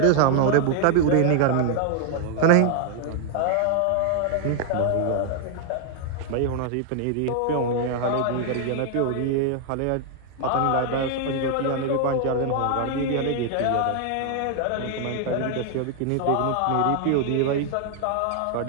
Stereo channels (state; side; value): different; both; correlation 0.00